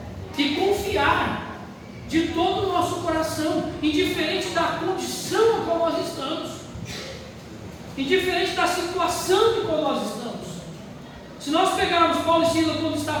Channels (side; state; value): both; identical; correlation 1.00